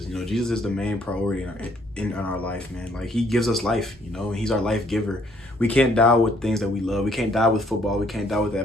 Jesus is the main priority in our life, man. He gives us life, and he's our life giver. We can't die with things that we love. We can't die with football. We can't die with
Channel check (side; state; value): both; normal; correlation 0.65